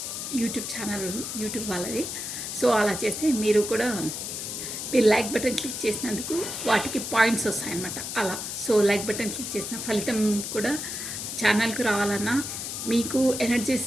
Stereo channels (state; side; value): noise; left; hiss, 5 dB below the sound